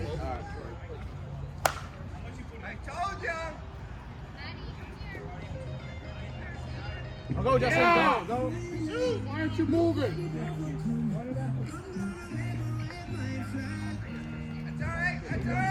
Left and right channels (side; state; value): both; identical; correlation 1.00